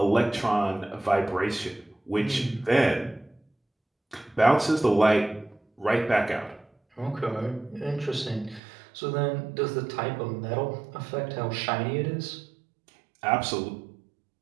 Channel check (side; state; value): left; drops out; at 8.6 s